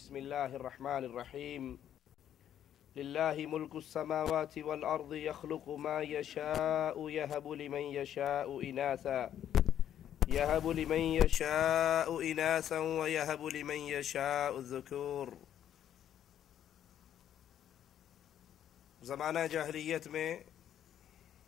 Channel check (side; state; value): right; quieter; 10.4 dB